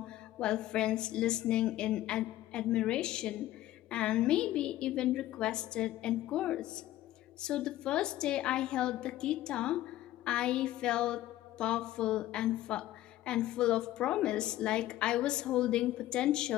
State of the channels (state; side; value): quieter; right; 14.7 dB